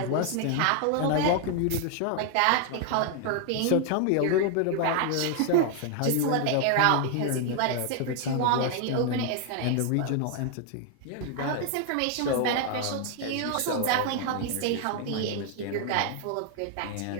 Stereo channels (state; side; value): different; both; correlation 0.00